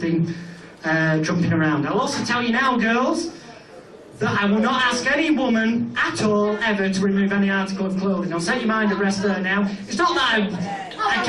jumping around. I'll also tell you now, girls, that I will not ask any woman at all ever to remove any article of clothing. I'll set your mind at rest there now. It's not that I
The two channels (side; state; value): both; identical; correlation 1.00